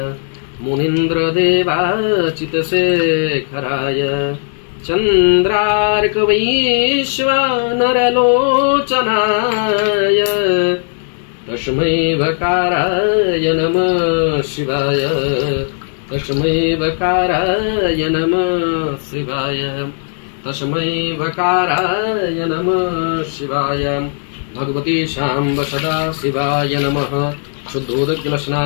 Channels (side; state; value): right; silent; 62 dB below the other